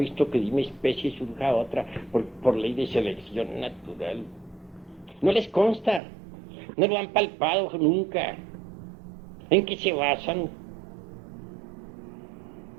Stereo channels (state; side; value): drops out; left; at 6.0 s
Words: que de una especie surja otra por ley de selección natural. No les consta, no lo han palpado nunca. ¿En qué se basan?